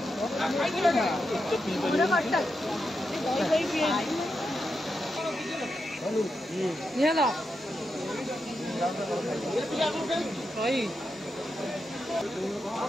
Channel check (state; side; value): normal; both; correlation 0.86